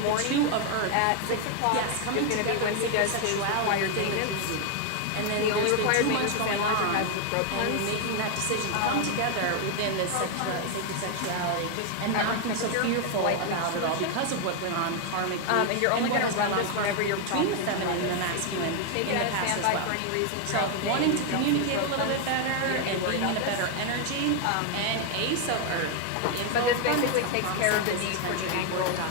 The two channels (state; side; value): different; both; correlation 0.01